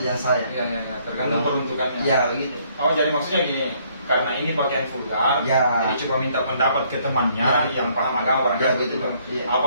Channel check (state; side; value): inverted; both; correlation -0.66